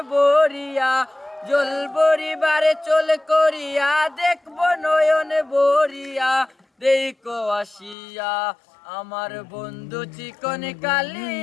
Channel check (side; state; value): right; drops out; at 8.0 s